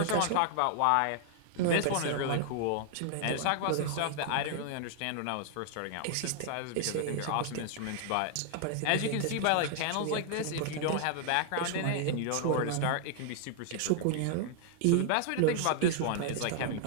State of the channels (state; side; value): different; both; correlation -0.01